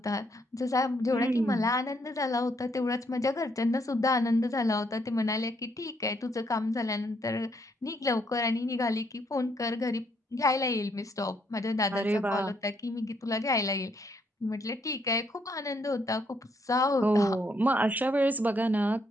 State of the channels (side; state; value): both; normal; correlation 0.72